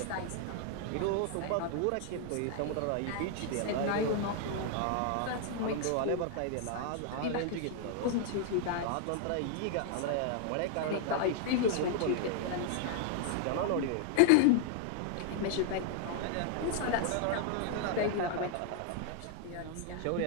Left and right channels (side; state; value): both; different; correlation 0.00